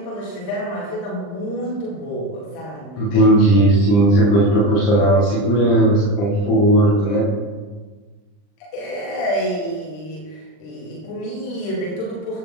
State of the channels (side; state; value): right; late; 39 ms